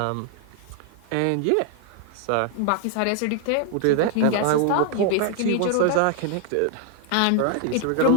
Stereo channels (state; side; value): different; both; correlation 0.00